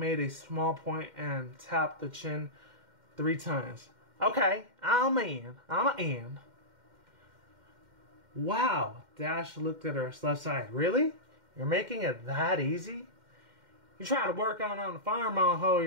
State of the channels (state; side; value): late; left; 2.1 ms